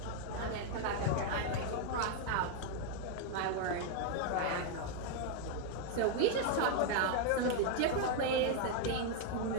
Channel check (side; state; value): both; different; correlation 0.00